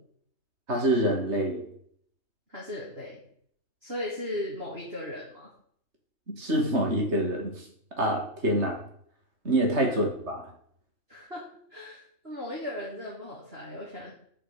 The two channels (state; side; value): late; left; 3.3 ms